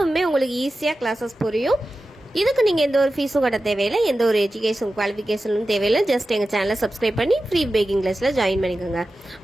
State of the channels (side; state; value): both; normal; correlation 0.93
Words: உங்களுக்கு ஈஸியாக கிளாஸஸ் புரியும். இதுக்கு நீங்கள் எந்த ஒரு ஃபீஸும் கட்ட தேவையில்லை, எந்த ஒரு எஜுகேஷன் குவாலிஃபிகேஷனும் தேவையில்லை. ஜஸ்ட் எங்கள் சேனலை சப்ஸ்கிரைப் பண்ணி ஃப்ரீ பேக்கிங் கிளாஸில் ஜாயின் பண்ணிக்கோங்க.